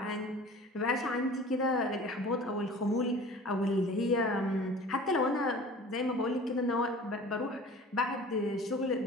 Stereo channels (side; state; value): both; normal; correlation 0.42